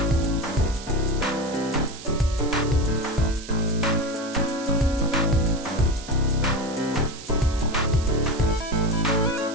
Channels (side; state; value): right; noise; hiss, 15 dB below the sound